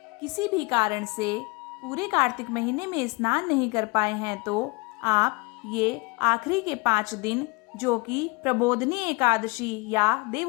किसी भी कारण से पूरे कार्तिक महीने में स्नान नहीं कर पाए हैं तो आप ये आखिरी के 5 दिन, जो कि प्रबोधनी एकादशी या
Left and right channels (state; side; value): quieter; right; 27.7 dB